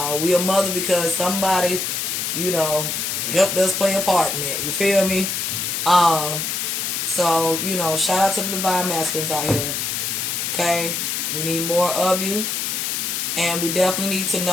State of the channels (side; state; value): left; noise; hiss, 1 dB below the sound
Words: We a mother because somebody, you know, helped us play a part in it. You feel me? So, you know, shout out to the divine masculines out here. Okay? We need more of you. And we definitely need to